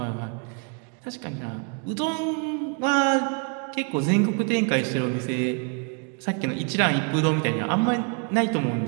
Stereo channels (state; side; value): quieter; left; 39.6 dB